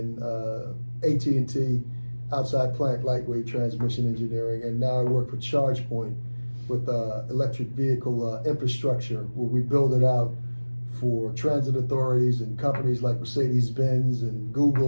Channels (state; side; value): inverted; both; correlation -1.00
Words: AT&T outside plant lightweight transmission engineering. And now I work for ChargePoint with electric vehicle infrastructure, where we build it out for transit authorities and companies like Mercedes-Benz and